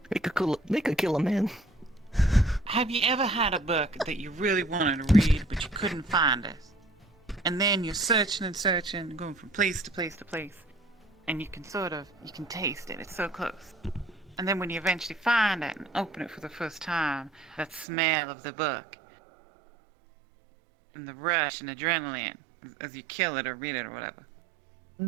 They could kill a man. have you ever had a book that you really wanted to read, but you couldn't find it? And then you're searching and searching, going from place to place to place, and you can taste it. It's so close. And then when you eventually find it and open it for the first time, that smell of the book, and the rush and adrenaline as you kill it or read it or whatever.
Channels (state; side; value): drops out; left; at 17.9 s